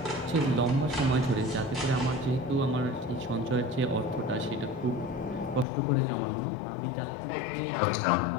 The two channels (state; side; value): drops out; right; at 5.7 s